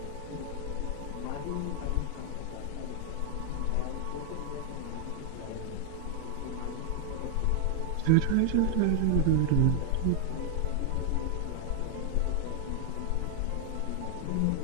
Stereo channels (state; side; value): different; both; correlation 0.00